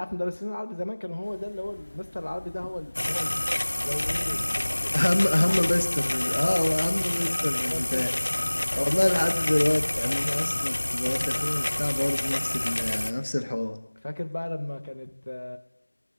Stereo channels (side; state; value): both; inverted; correlation -1.00